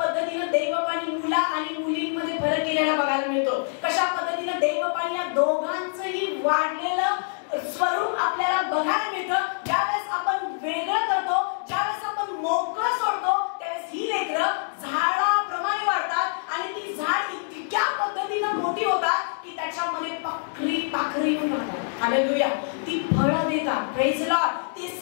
देवबापांनी मुला आणि मुलींमध्ये फरक केलेला बघायला मिळतो. कशा पद्धतीनं देवबापांनी या दोघांचंही वाढलेलं स्वरूप आपल्याला बघायला मिळतं. ज्यावेळेस आपण वेगळं करतो, ज्यावेळेस आपण मोकळं सोडतो, त्यावेळेस ही लेकरं झाडाप्रमाणे वाढतात आणि ती झाड इतक्या पद्धतीनं मोठी होतात की त्याच्यामध्ये पाखरी येऊन राहतात. हालेलुया. ती फळं देतात. Praise the Lord. ती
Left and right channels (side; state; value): right; silent; digital silence